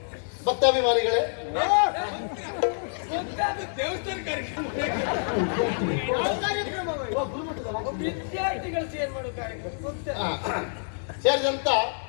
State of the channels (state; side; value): silent; right; digital silence